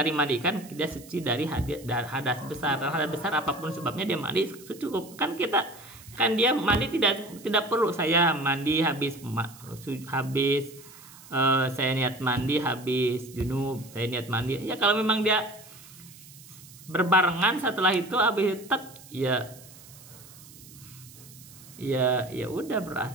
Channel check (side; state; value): right; noise; hiss, 20 dB below the sound